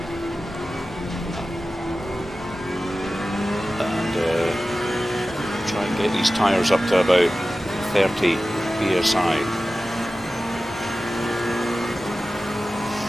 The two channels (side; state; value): both; normal; correlation 0.95